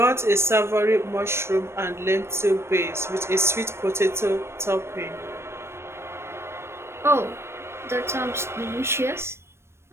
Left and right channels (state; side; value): late; left; 0.12 ms